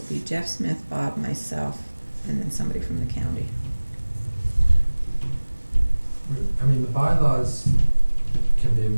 be Jeff Smith, Bob, myself, and then somebody from the county. I mean, the bylaws can be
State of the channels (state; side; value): inverted; both; correlation -1.00